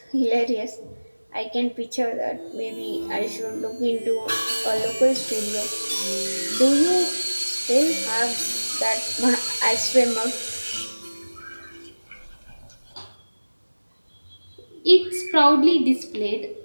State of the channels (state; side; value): inverted; both; correlation -1.00